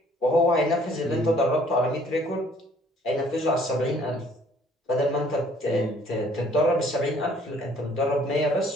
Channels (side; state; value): both; normal; correlation 0.59